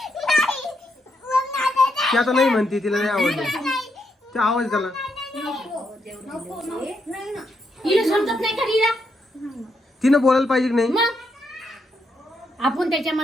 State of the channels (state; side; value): normal; both; correlation 0.79